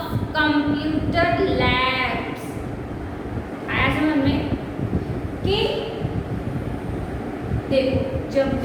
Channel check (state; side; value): identical; both; correlation 1.00